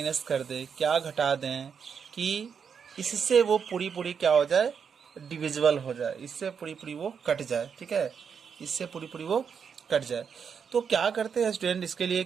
कर दें, क्या घटा दें कि इससे वो पूरी क्या हो जाए, डिविजिबल हो जाए, इससे पूरी वो कट जाए। ठीक है, इससे पूरी वो कट जाए। तो क्या करते हैं स्टूडेंट इसके लिए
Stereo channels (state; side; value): quieter; left; 6.7 dB